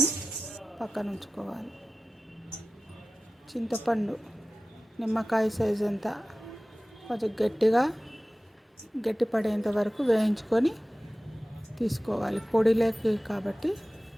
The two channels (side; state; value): both; normal; correlation 0.96